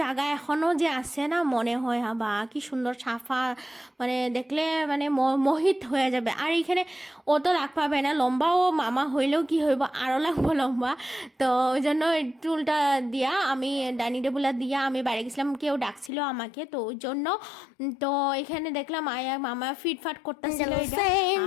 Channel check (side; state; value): right; drops out; at 16.1 s